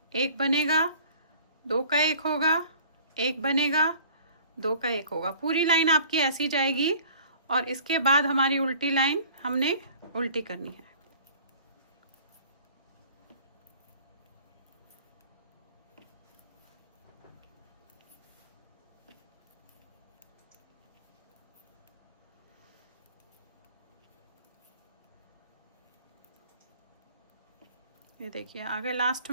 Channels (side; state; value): both; inverted; correlation -0.49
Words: 1 बनेगा, 2 का 1 होगा, 1 बनेगा, 2 का 1 होगा। पूरी लाइन आपकी ऐसी जाएगी, और इसके बाद हमारी उल्टी लाइन हमने उल्टी करनी है। ये देखिए, आगे लास्ट